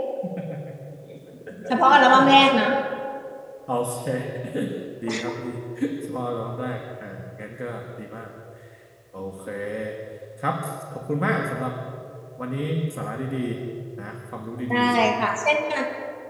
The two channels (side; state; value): both; identical; correlation 1.00